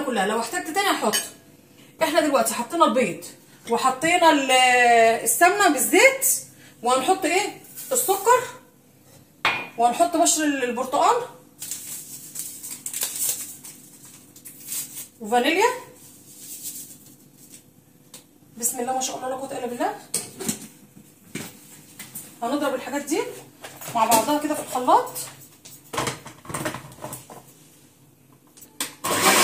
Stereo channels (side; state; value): both; identical; correlation 1.00